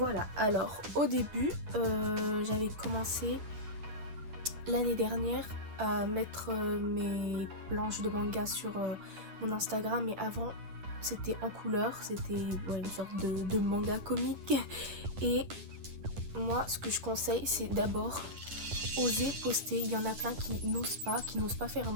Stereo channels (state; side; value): late; left; 10 ms